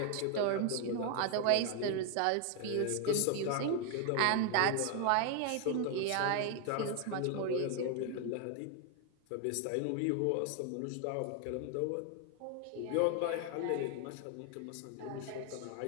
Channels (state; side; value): different; both; correlation 0.01